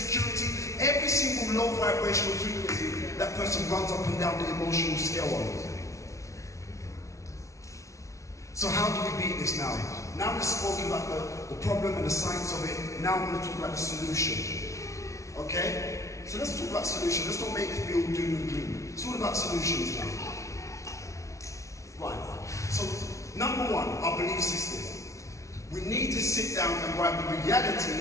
Every single low vibrational frequency, that person runs up and down the emotional scale on. So how do we beat this now? Now we've spoken about the problem and the science of it. Now we're going to talk about the solution. Okay? So let's talk about solution. Let's not make it be all doom and gloom. It's all about solutions now. Right. So number one, our belief system. We need to sit down and write the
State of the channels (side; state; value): right; late; 0.14 ms